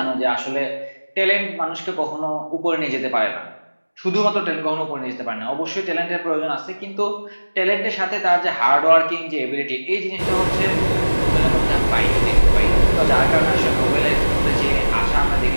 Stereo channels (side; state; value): both; inverted; correlation -1.00